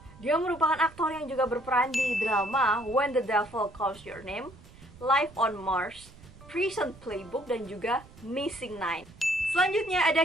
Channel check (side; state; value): right; noise; rumble, 21 dB below the sound